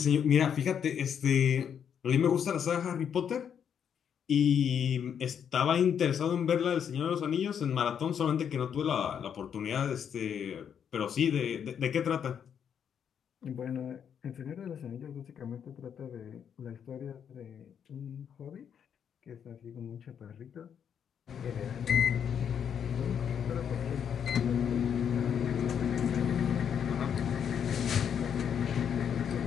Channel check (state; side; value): quieter; right; 8.1 dB